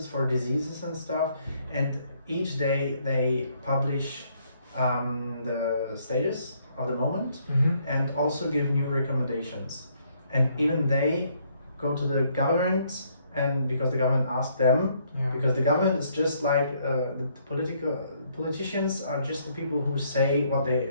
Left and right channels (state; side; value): inverted; both; correlation -0.69